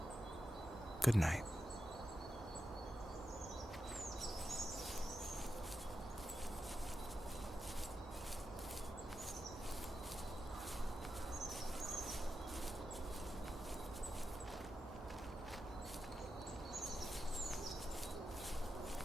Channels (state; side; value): normal; both; correlation 0.89